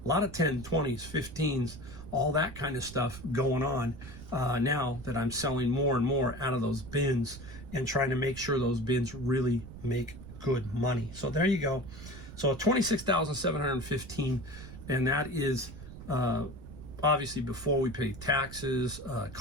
a lot of 10, 20s, 15s, all that kind of stuff going on now that I'm selling more and more out of those bins and trying to make sure those bins really make good money. So there you go. So $26,715, and that is obviously before we pay taxes,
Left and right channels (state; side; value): noise; right; rumble, 14 dB below the sound